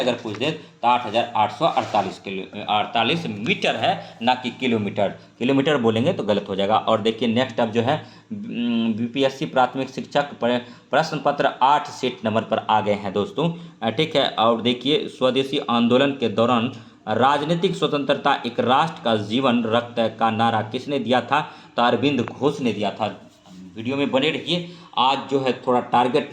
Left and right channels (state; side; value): identical; both; correlation 1.00